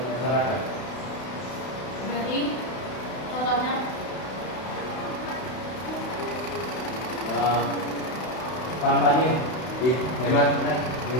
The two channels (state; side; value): late; right; 32 ms